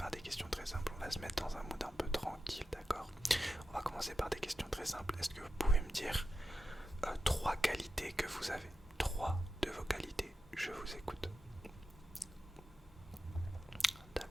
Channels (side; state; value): both; normal; correlation 0.91